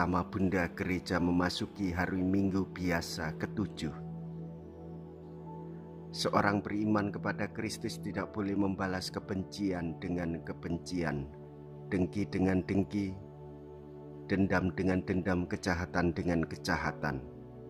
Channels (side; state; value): both; identical; correlation 1.00